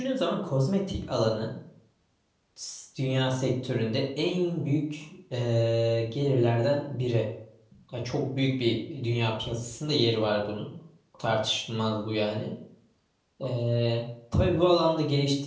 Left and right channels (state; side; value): identical; both; correlation 1.00